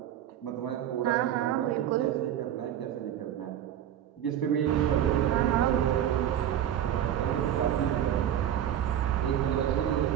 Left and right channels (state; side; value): quieter; left; 10.7 dB